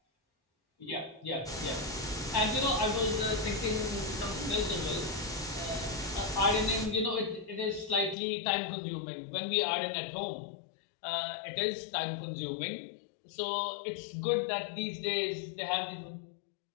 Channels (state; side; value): drops out; right; at 8.2 s